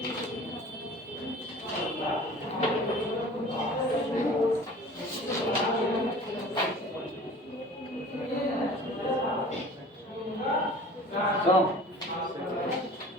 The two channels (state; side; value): normal; both; correlation 0.43